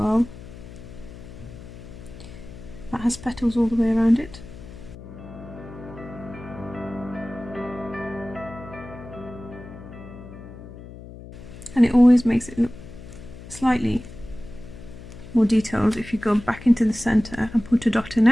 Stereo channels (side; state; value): left; noise; hum, 15 dB below the sound